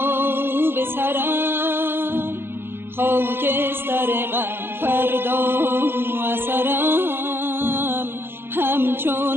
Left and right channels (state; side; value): late; left; 0.11 ms